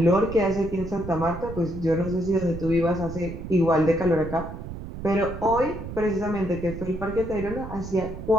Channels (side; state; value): right; noise; rumble, 10 dB below the sound